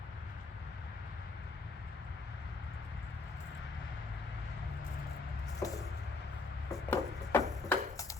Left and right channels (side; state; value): right; quieter; 3.8 dB